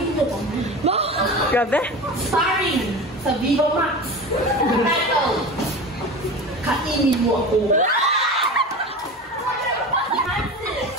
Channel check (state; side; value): normal; both; correlation 0.31